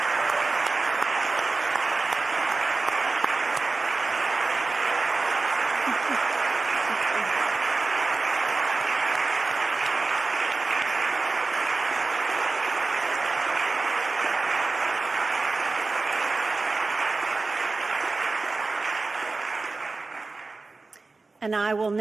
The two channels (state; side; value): quieter; left; 3.7 dB